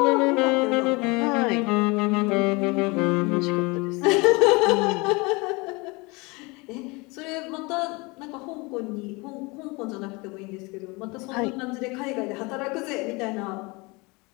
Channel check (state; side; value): quieter; right; 26.4 dB